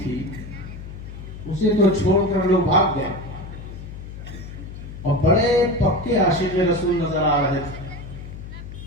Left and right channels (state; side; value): noise; left; hum, 12 dB below the sound